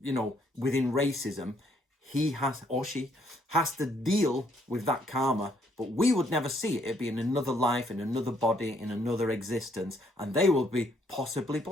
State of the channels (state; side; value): normal; both; correlation 0.68